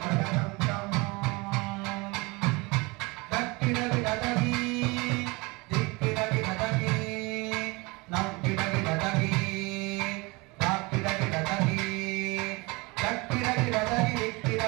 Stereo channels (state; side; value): quieter; left; 25.6 dB